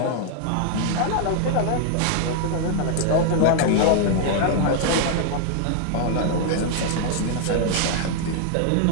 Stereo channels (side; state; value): both; different; correlation 0.00